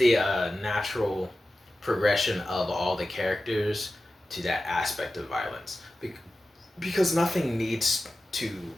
natural progression of all the characters to that aspect of violence. Because nothing needs to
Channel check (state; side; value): normal; both; correlation 0.94